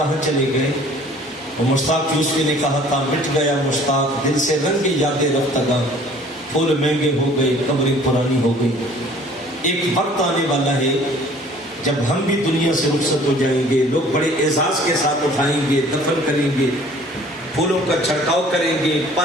چلے گئے؟ وہ مشتاق یوسفی نے کہا تھا، مٹ گیا مشتاق دل سے رنگی یادیں رفتگاں، پھول مہنگے ہو گئے قبریں پرانی ہو گئی۔ ایک وقت آنے والا ہے جب ہم بھی دنیا سے رخصت ہو جائیں گے، لوگ بڑے اعزاز کے ساتھ اٹھائیں گے، دفن کریں گے، پھولوں کا چھڑکاؤ کریں گے،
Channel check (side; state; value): both; normal; correlation 0.52